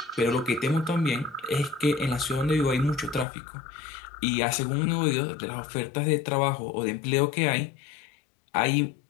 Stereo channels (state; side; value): drops out; right; at 3.2 s